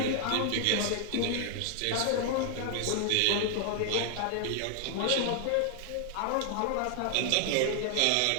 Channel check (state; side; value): different; both; correlation 0.00